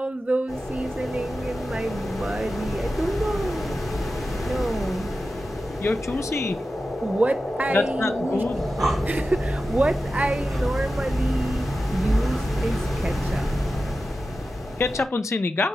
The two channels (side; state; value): both; normal; correlation 0.92